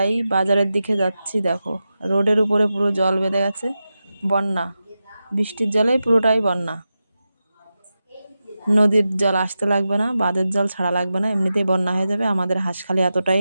বাজারের দিকে যাচ্ছি, দেখো রোডের উপরে পুরো জল বেঁধে গেছে, বন্যা, বৃষ্টির জলে পুরোটাই বন্যা। নদীর জল আসতে লাগবে না, বাঁধের জল ছাড়া লাগবে না, এমনিতেই বন্যা হয়ে যাবে। আমাদের হাঁসখালি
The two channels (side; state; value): both; inverted; correlation -0.91